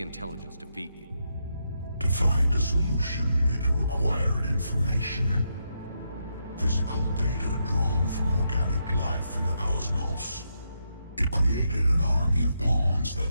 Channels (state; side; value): inverted; both; correlation -0.81